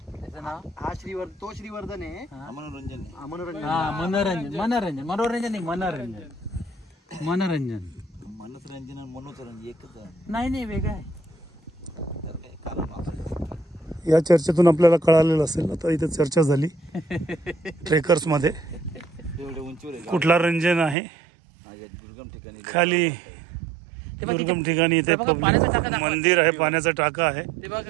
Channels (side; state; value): left; drops out; at 21.0 s